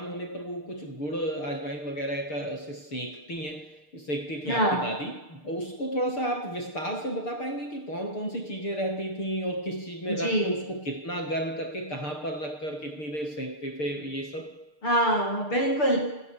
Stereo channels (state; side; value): late; right; 6.7 ms